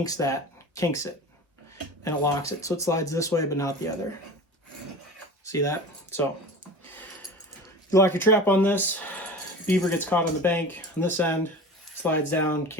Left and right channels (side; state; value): both; normal; correlation 0.35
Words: it, and it locks it. So it slides this way, but not the other. See that? So you lock your trap on this, beaver gets caught on the bank on this end, slides down,